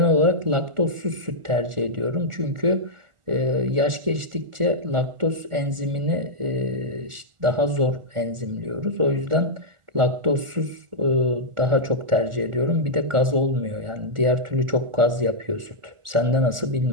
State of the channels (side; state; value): left; late; 1.4 ms